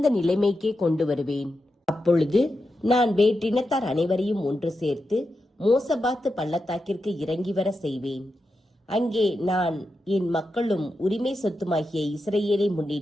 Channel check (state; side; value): normal; both; correlation 0.88